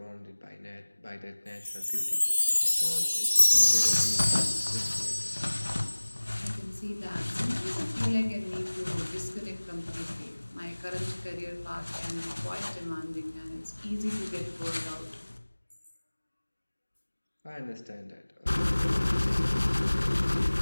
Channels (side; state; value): both; inverted; correlation -1.00